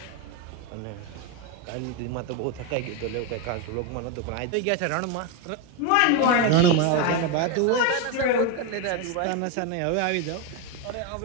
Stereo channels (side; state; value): both; different; correlation 0.02